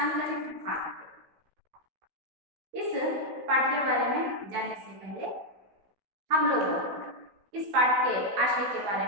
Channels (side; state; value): left; late; 16 ms